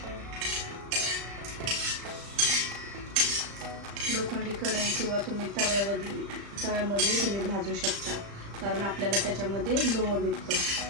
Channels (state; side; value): late; left; 35 ms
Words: लोखंडी कढई किंवा तुम्ही तव्यामध्ये तुम्ही भाजू शकता, कारण आपल्याला त्याच्यामध्ये लोह भेटतं।